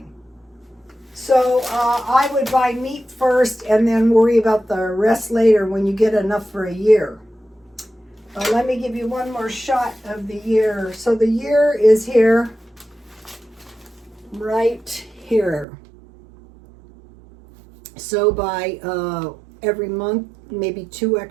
So I would buy meat first and then worry about the rest later when you get enough for a year. Let me give you one more shot of the year. So the year is here, right here. So by every month, maybe 2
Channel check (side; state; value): left; drops out; at 15.7 s